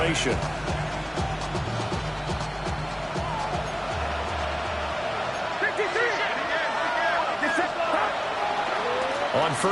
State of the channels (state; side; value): identical; both; correlation 1.00